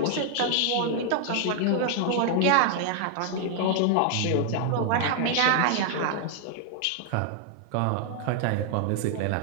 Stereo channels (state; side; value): different; both; correlation 0.00